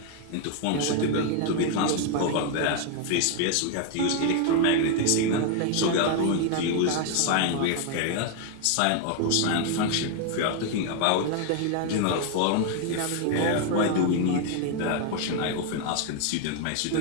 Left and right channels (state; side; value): different; both; correlation 0.01